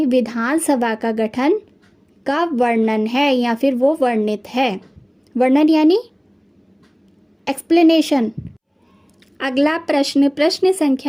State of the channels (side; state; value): both; identical; correlation 1.00